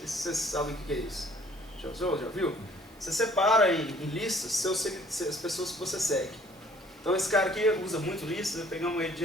se vocês sabem o que é isso. Já usou? Já viu? Você separa em listas as pessoas que você segue. Então esse cara aqui usa muito listas, pegamos ele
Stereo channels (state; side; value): normal; both; correlation 0.57